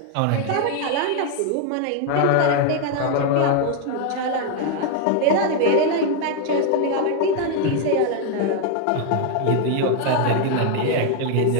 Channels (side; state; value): both; different; correlation 0.01